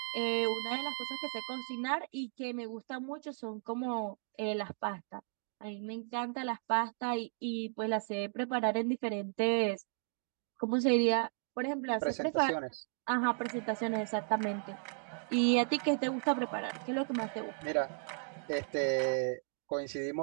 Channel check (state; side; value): silent; left; 54 dB below the other